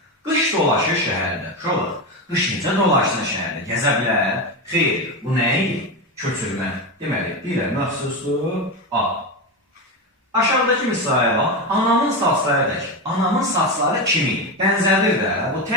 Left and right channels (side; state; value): both; normal; correlation 0.16